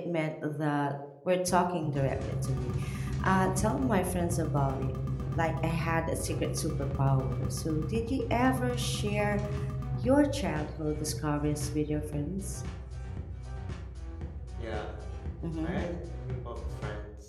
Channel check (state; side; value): identical; both; correlation 1.00